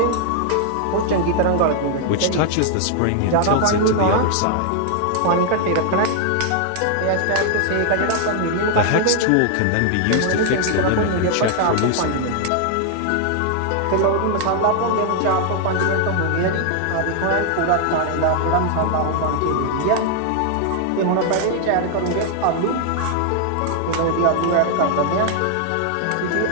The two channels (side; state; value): both; different; correlation 0.00